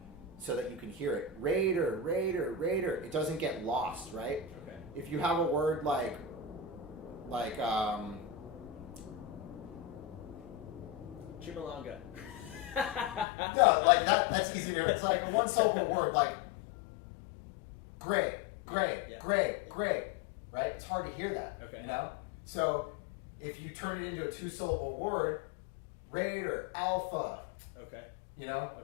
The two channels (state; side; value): drops out; right; at 13.2 s